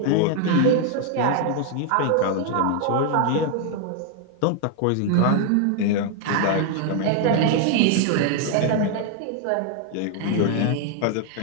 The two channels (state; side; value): different; both; correlation 0.00